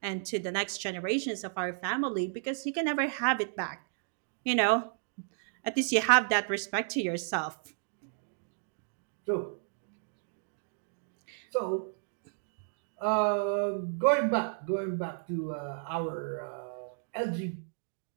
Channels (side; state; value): left; silent; digital silence